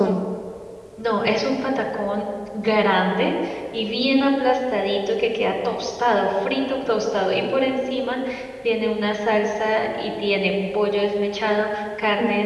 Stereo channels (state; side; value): identical; both; correlation 1.00